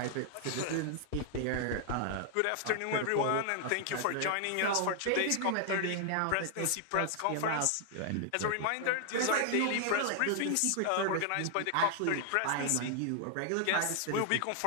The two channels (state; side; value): different; both; correlation 0.00